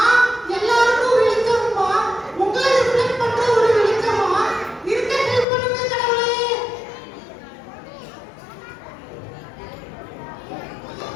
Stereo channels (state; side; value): drops out; right; at 5.5 s